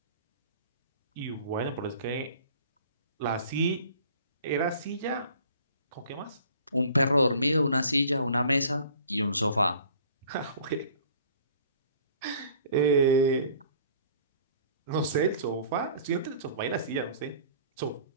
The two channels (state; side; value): inverted; both; correlation -0.50